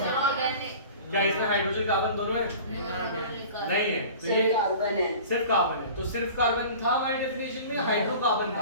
क्या इसमें हाइड्रोजन कार्बन दोनों है? नहीं है, तो ये कार्बन है। सिर्फ कार्बन है। तो सिर्फ कार्बन था हमारी डेफिनेशन में, हाइड्रोकार्बन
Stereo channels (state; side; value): inverted; both; correlation -0.41